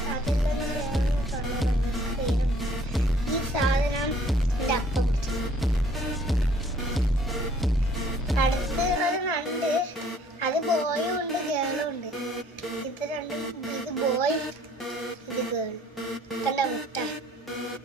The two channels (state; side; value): normal; both; correlation 0.59